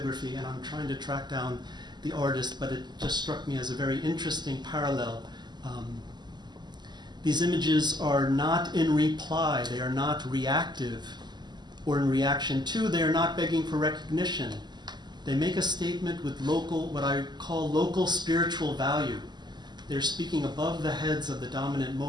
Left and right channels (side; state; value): left; late; 0.21 ms